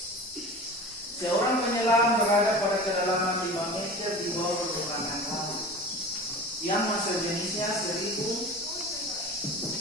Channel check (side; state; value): both; normal; correlation 0.35